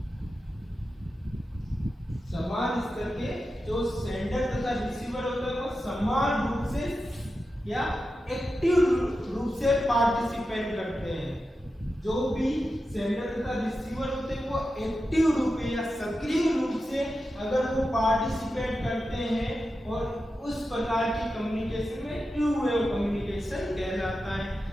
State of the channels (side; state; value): both; normal; correlation 0.91